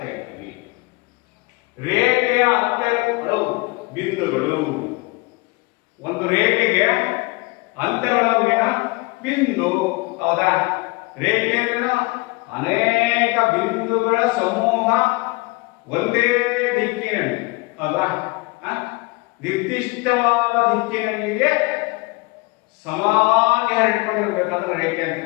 ಹೇಳ್ತೀವಿ. ರೇಖೆಯ ಅಂತ್ಯಗಳು ಬಿಂದುಗಳು. ಒಂದು ರೇಖೆಗೆ ಅಂತ್ಯಗಳಲ್ಲಿನ ಬಿಂದು. ಹೌದಾ? ರೇಖೆಯಲ್ಲಿನ ಅನೇಕ ಬಿಂದುಗಳ ಸಮೂಹ ಒಂದೇ ದಿಕ್ಕಿನಲ್ಲಿ, ಹೌದಾ, ನಿರ್ದಿಷ್ಟವಾದ ದಿಕ್ಕಿನಲ್ಲಿಗೆ ಸಮಾನವಾಗಿ ಹರಡಿಕೊಂಡಿರ್ಬೇಕಾದ್ರೆ ರೇಖೆ ಅಂತ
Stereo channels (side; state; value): right; quieter; 25.8 dB